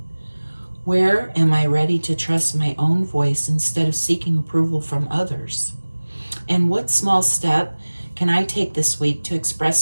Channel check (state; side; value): inverted; both; correlation -1.00